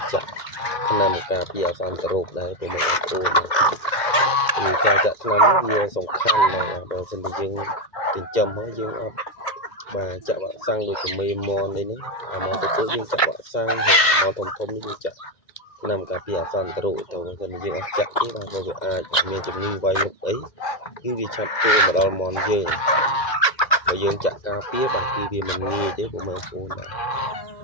ចាក់ថ្នាំការពារអសន្នរោគដែរព្រោះបងប្អូនគឺការចាក់ថ្នាំវាសំខាន់ណាស់បើមិនតែយើងចិញ្ចឹមហើយយើងអត់បាទចាក់វ៉ាក់សាំងដូចជាមេមននេះអាមកទៅយើងចាក់វ៉ាក់សាំងហើយអាមកធំនេះយើងចាក់ថ្នាំការពារអសន្នរោគទៅបើមិនយើងអត់ចាក់ទេបាទវាអាចមានជំងឺវាយលុកអីគឺវាឆាប់ចូលមកដល់មនយើងបើយើងចាក់ការពារបាទគឺវាមិនងាយទេបងប្អូនបាទ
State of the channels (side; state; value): right; late; 2.1 ms